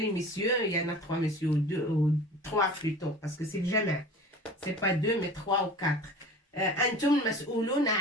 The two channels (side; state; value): both; normal; correlation 0.39